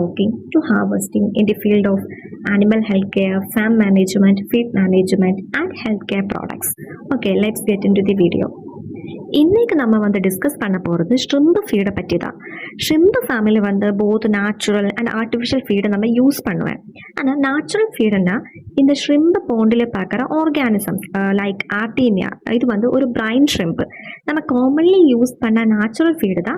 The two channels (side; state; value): both; identical; correlation 1.00